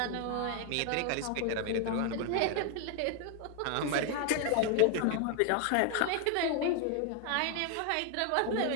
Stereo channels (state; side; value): different; both; correlation 0.00